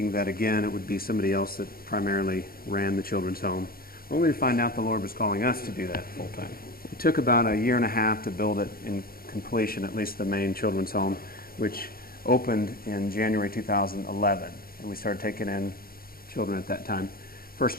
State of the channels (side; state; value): right; late; 0.43 ms